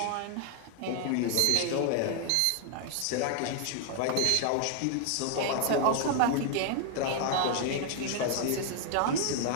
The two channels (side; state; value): both; different; correlation 0.00